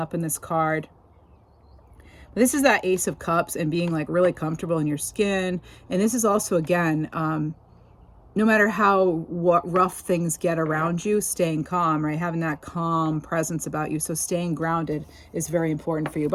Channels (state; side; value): identical; both; correlation 1.00